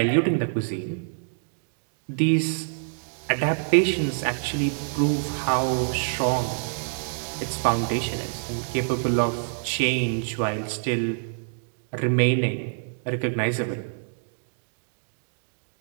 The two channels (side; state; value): left; silent; digital silence